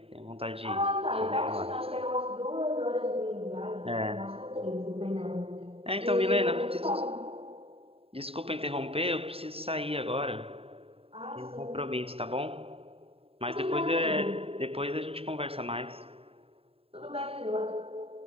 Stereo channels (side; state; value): left; late; 0.28 ms